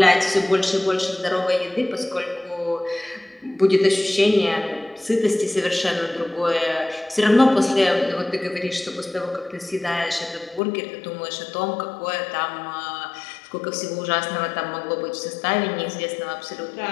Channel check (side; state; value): right; drops out; at 10.6 s